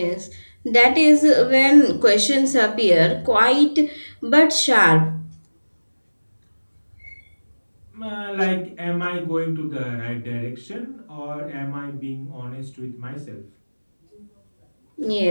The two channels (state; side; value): inverted; both; correlation -1.00